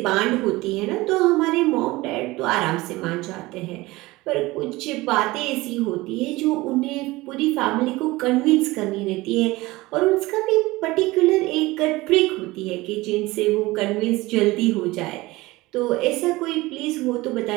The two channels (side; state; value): left; quieter; 20.4 dB